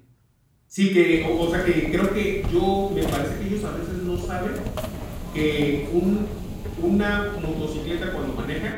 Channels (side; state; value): both; identical; correlation 1.00